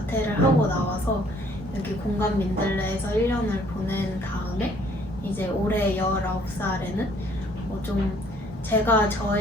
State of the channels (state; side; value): normal; both; correlation 0.60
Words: 하고 나와서 여기 공감 민들레에서 1년을 보낸 다음에 이제 올해 19살에는 좀 제가